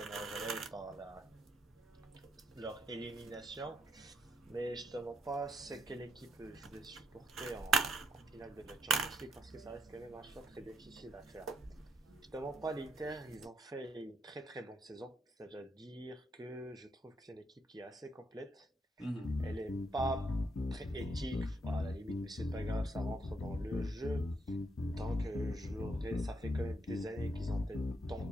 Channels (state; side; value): normal; both; correlation 0.76